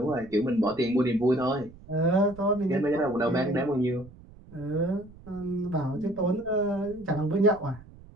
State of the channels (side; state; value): right; noise; rumble, 21 dB below the sound